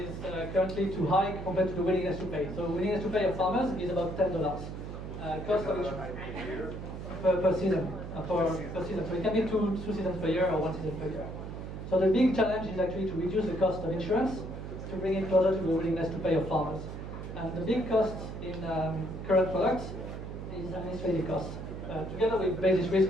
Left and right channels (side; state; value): right; noise; hum, 8 dB below the sound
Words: currently too high compared to the willingness to pay. So willingness to pay of farmers is about $10. Cost of insurance per season. Per season. So it can be two seasons per year or 1 season per year. So the big challenge is actually to reduce the cost of insurance to bring it closer to the willingness to pay of farmers. And the big cost in current products is administrative cost. Together with basis risk,